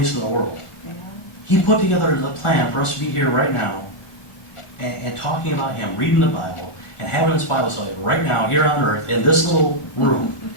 of the world. yeah. He put together the plan for us to be here right now and talking about him, reading the Bible, and having this Bible study right now, here on earth, in this little room.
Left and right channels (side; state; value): right; late; 1.4 ms